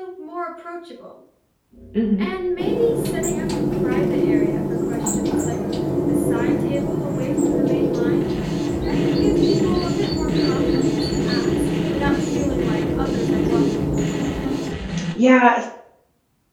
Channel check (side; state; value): both; identical; correlation 1.00